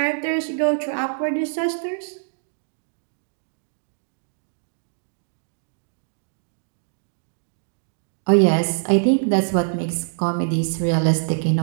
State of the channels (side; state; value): left; silent; digital silence